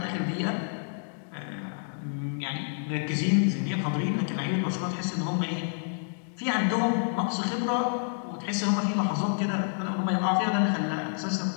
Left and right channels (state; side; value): silent; right; 59 dB below the other